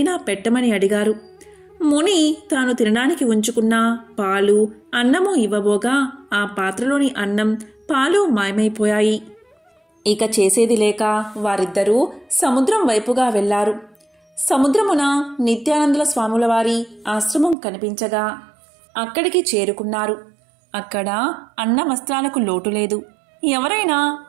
పెట్టమని అడిగారు. ముని తాను తినడానికి ఉంచుకున్న పాలు అన్నము ఇవ్వబోగా ఆ పాత్రలోని అన్నం పాలు మాయమైపోయాయి. ఇక చేసేది లేక వారిద్దరూ సముద్రం వైపుగా వెళ్లారు. సముద్రమున నిత్యానందుల స్వాముల వారి ఆశ్రమం కనిపించగా అక్కడికి చేరుకున్నారు. అక్కడ అన్న వస్త్రాలకు లోటు లేదు. ఎవరైనా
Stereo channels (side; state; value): left; drops out; at 17.6 s